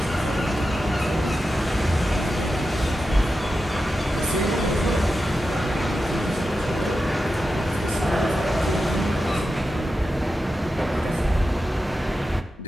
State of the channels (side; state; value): both; normal; correlation 0.91